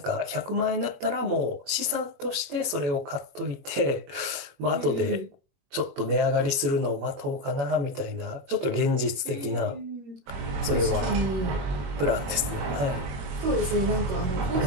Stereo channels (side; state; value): left; late; 21 ms